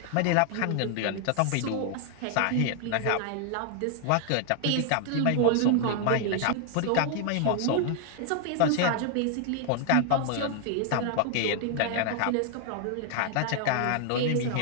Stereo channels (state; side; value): different; both; correlation 0.00